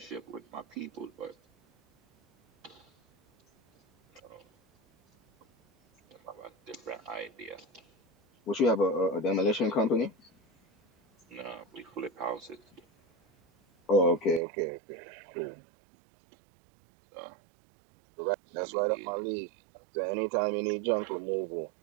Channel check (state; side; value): drops out; left; at 14.4 s